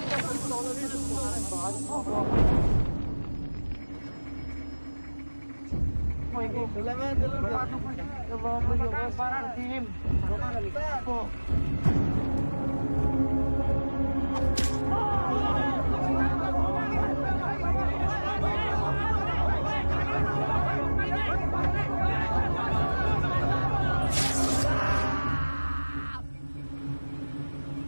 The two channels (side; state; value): both; inverted; correlation -1.00